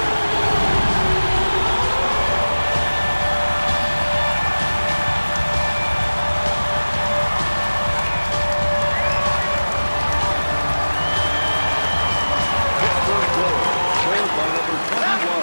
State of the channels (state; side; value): inverted; both; correlation -1.00